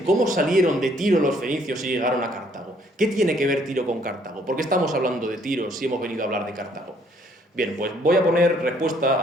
¿cómo salieron de Tiro los fenicios y llegaron a Cartago? ¿Qué tiene que ver Tiro con Cartago? ¿Por qué estamos hablando de Tiro si hemos venido a hablar de Cartago? Bien, pues voy a poner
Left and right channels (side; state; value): both; normal; correlation 0.64